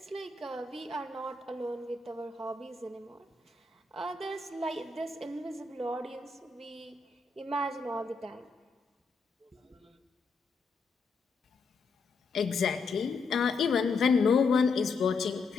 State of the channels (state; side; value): quieter; right; 4.3 dB